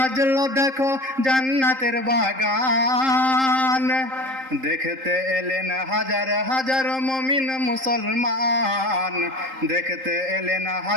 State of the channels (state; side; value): late; left; 3.8 ms